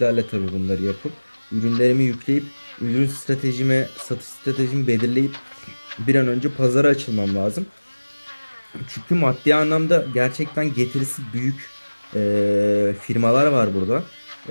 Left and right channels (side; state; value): both; inverted; correlation -1.00